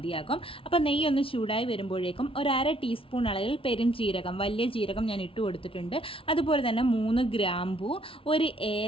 അപ്പോൾ നെയ്യ് ഒന്ന് ചൂടായി വരുമ്പോഴേക്കും 1/2 ടീസ്പൂൺ അളവിൽ പെരുംജീരകം, വലിയ ജീരകം ഞാൻ ഇട്ട് കൊടുത്തിട്ടുണ്ട്. അതുപോലെ തന്നെ 3 ഗ്രാമ്പൂ, 1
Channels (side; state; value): right; late; 0.26 ms